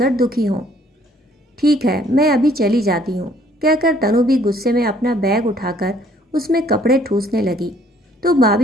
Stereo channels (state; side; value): normal; both; correlation 0.62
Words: दुखी हों। ठीक है, मैं अभी चली जाती हूँ, कहकर तनु भी गुस्से में अपना बैग उठाकर उसमें कपड़े ठूसने लगी तो